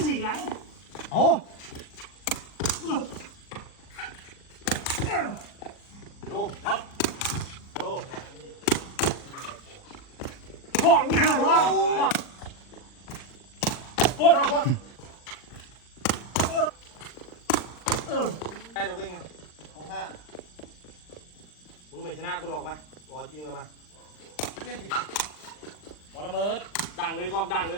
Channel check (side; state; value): right; late; 40 ms